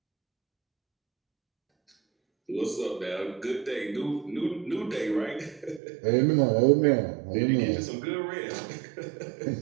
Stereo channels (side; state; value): left; drops out; at 5.8 s